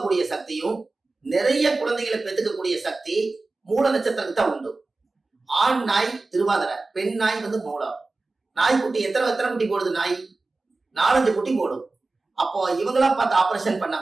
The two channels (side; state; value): left; quieter; 3.5 dB